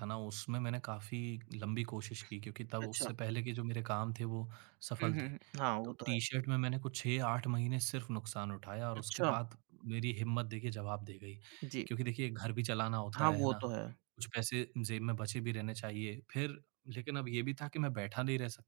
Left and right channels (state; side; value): quieter; left; 34.4 dB